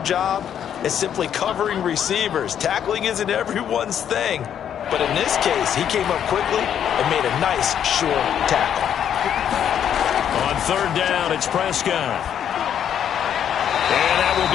as simply covering receivers. Tackling isn't everyone's thing. But in this case, he came up quickly and made a nice, short tackle. On 3rd down, it's Prescott. And that will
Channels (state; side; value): quieter; right; 9.3 dB